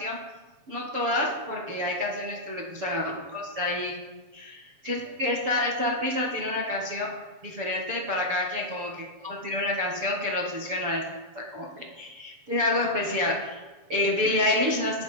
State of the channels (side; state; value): left; late; 7.3 ms